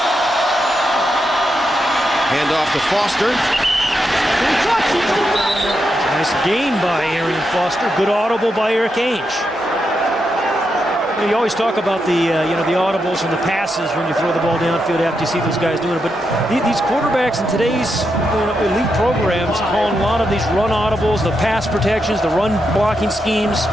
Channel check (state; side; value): normal; both; correlation 0.84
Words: Hand off to Foster. Nice gain by Arian Foster. Good audible by Eric Ainge. You always talk about the the audibles and the passes when you throw the ball downfield after you see those guys doing it. But these quarterbacks in today's elite programs calling a lot of these run audibles, the pass protections, the run blocking schemes.